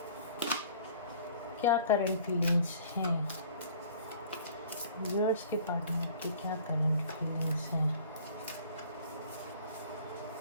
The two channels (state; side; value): inverted; both; correlation -0.50